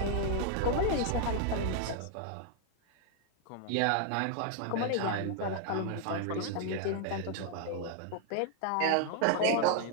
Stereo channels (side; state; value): both; different; correlation 0.00